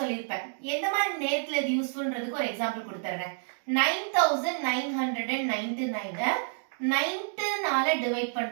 எந்த மாதிரி நேரத்துல இது யூஸ்ஃபுல்ன்றதுக்கு ஒரு எக்ஸாம்பிள் கொடுத்துறேன். 9999 9னால டிவைட்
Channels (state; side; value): silent; left; digital silence